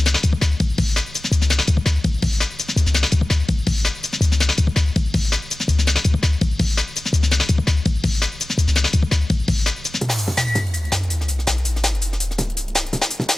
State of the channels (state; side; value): normal; both; correlation 0.96